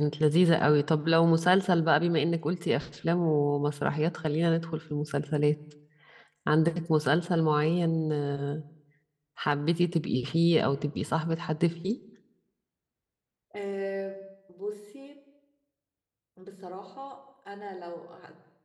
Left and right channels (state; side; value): identical; both; correlation 1.00